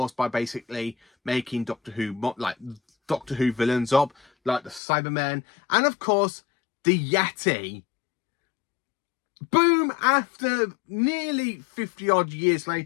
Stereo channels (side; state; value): right; drops out; at 4.8 s